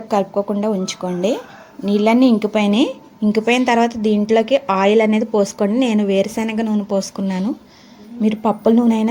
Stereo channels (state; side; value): identical; both; correlation 1.00